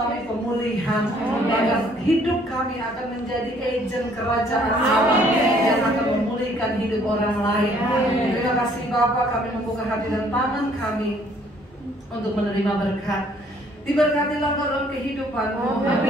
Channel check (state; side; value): normal; both; correlation 0.62